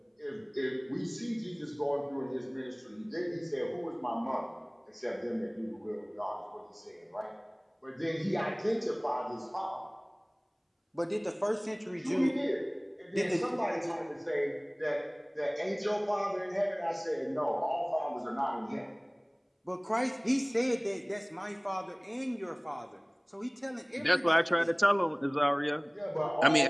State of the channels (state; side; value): identical; both; correlation 1.00